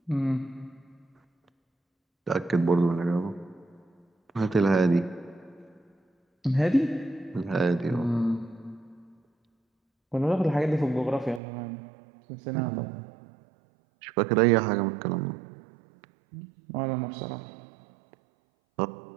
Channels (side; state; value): left; drops out; at 11.4 s